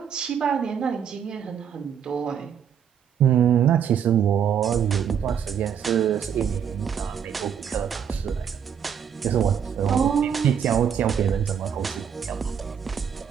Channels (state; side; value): quieter; left; 8.1 dB